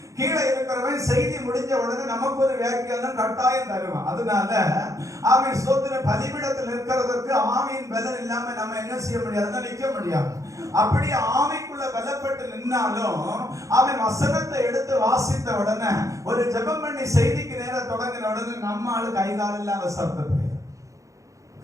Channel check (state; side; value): late; left; 0.15 ms